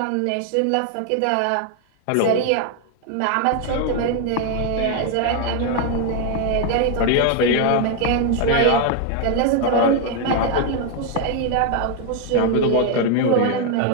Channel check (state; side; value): different; both; correlation 0.01